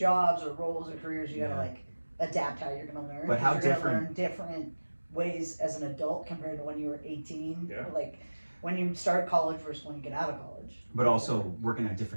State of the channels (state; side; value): inverted; both; correlation -1.00